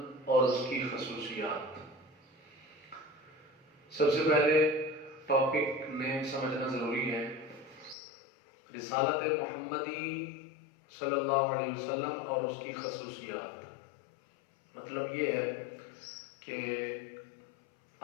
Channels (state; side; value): drops out; right; at 8.0 s